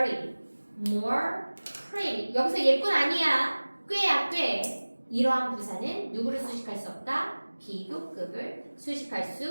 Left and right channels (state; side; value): inverted; both; correlation -1.00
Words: more, pretty. 여기서 예쁜 아니야. 꽤야 꽤. 이러한 부사는 누구를 수식할 수 없다? 비교급을 수식할